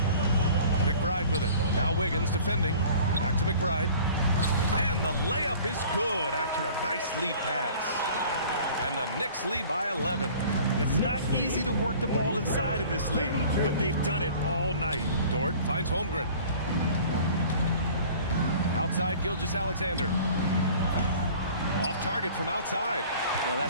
McBride with it. Now Wiggins defending. Back to McBride. And the layup is good after a nice lead pass. And the Knicks lead by 11. It's not easy to work the ball inside in this league, but they've done it all night. Dort finds Holmgren. Outside Gilgeous-Alexander. Off target from outside. Well,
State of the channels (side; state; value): both; inverted; correlation -0.46